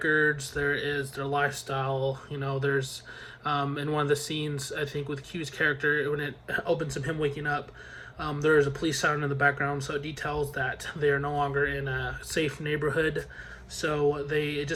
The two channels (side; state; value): both; identical; correlation 1.00